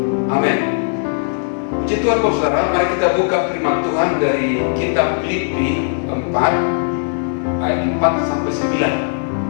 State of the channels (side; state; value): right; silent; digital silence